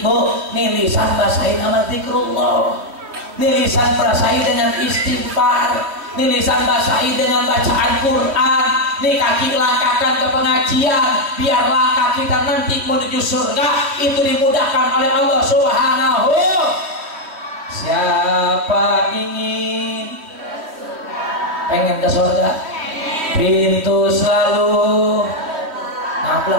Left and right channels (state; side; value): late; left; 3.1 ms